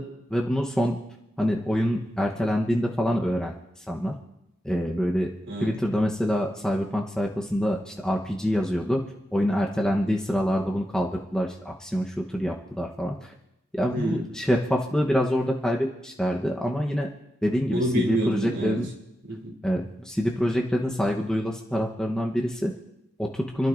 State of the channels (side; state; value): both; normal; correlation 0.89